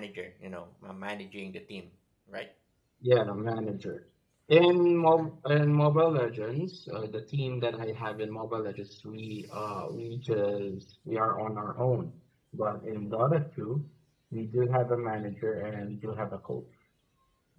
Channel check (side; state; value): both; identical; correlation 1.00